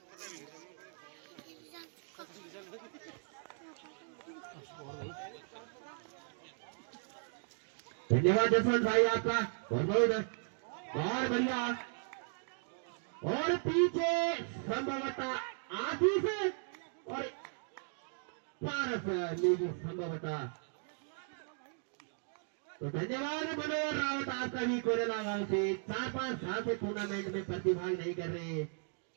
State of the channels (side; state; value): left; silent; 53 dB below the other